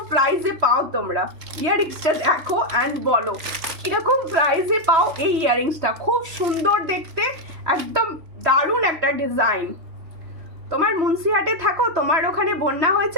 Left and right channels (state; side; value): late; left; 3.1 ms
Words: প্রাইসে পাও তোমরা, ইয়াররিংসটা দেখো অ্যান্ড বলো কিরকম প্রাইসে পাও এই ইয়াররিংসটা। খুব সুন্দর দেখতে, একদম দারুণ একটা ডিজাইন। তোমার মুন্সিহাটে থাকো, তোমার ওখানে বন্যা